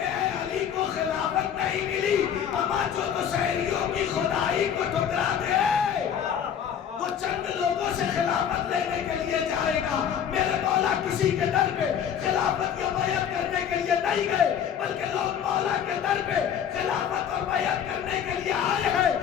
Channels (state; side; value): quieter; right; 8.6 dB